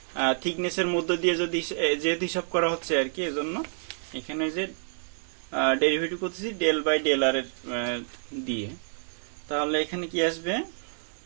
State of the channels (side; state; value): left; silent; digital silence